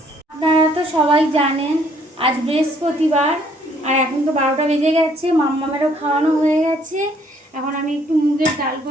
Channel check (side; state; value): both; normal; correlation 0.64